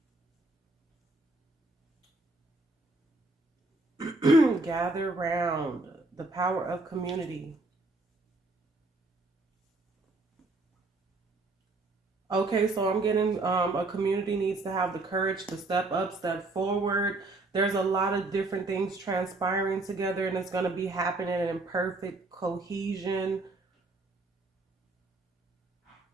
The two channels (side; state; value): left; quieter; 3.1 dB